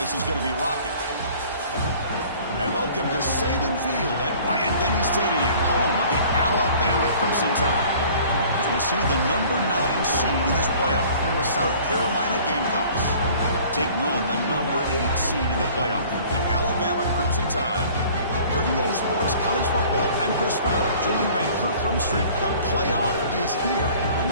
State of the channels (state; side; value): inverted; both; correlation -0.50